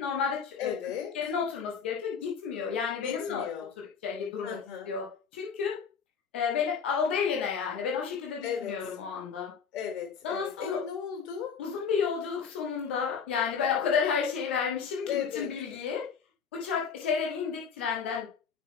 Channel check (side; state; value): right; quieter; 6.4 dB